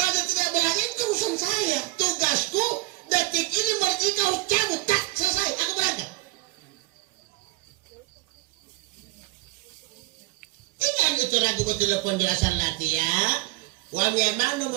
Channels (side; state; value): left; quieter; 20.0 dB